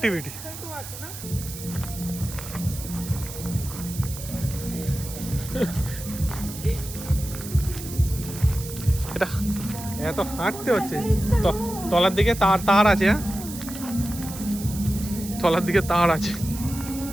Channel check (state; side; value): noise; right; hiss, 11 dB below the sound